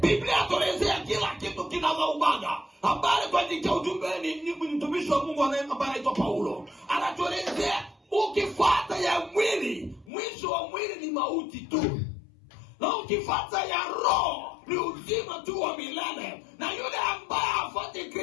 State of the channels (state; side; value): drops out; right; at 10.1 s